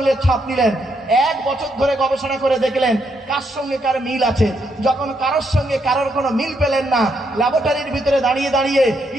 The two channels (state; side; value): normal; both; correlation 0.77